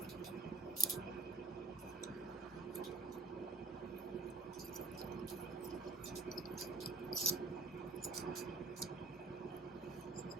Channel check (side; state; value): left; quieter; 3.3 dB